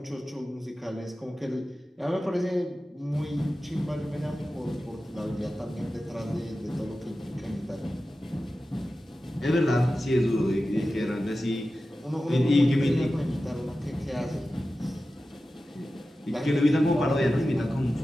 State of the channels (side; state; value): both; normal; correlation 0.94